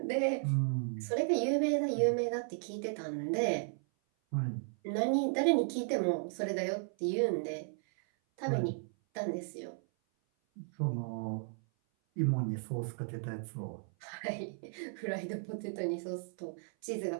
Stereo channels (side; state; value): left; silent; 54 dB below the other